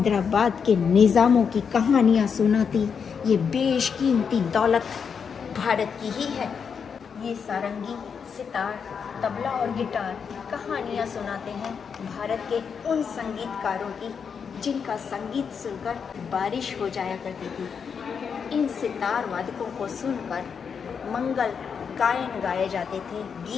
के निज़ामों की कहानियाँ सुनाती ये बेशकीमती दौलत भारत की ही है। ये सारंगी, सितार, तबला और गिटार कहानियाँ सुनाते हैं भारत के उन संगीतकारों की जिनका संगीत सुनकर बारिश हो जाया करती थी। इन सितार वादकों को सुनकर मंगल गायन गाए जाते थे,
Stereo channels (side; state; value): right; quieter; 6.5 dB